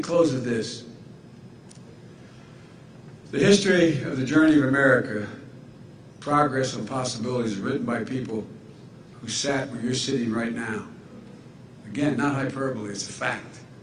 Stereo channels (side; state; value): both; identical; correlation 1.00